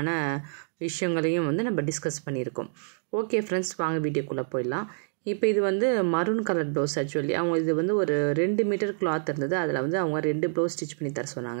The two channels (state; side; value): silent; left; digital silence